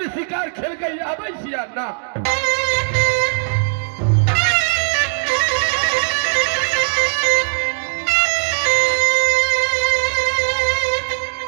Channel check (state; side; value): silent; left; digital silence